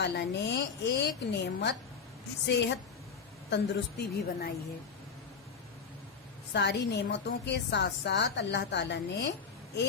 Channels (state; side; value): quieter; right; 5.7 dB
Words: ने एक नेमत सेहत तंदुरुस्ती भी बनाई है। सारी नेमतों के साथ साथ अल्लाह ताला ने